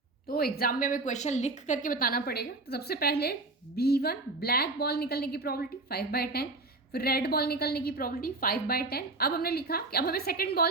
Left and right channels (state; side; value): quieter; left; 3.2 dB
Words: तो एग्जाम में हमें क्वेश्चन लिख करके बताना पड़ेगा। तो सबसे पहले B1 ब्लैक बॉल निकलने की प्रोबेबिलिटी 5/10, फिर रेड बॉल निकलने की प्रोबेबिलिटी 5/10। अब हमने लिखा कि अब हमें सेकंड